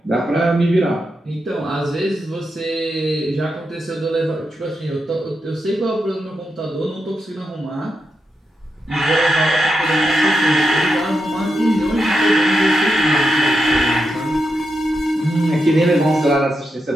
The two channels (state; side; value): normal; both; correlation 0.86